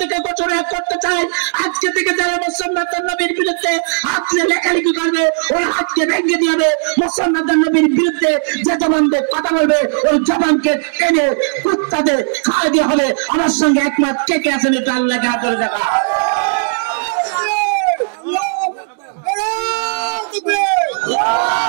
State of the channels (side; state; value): left; silent; digital silence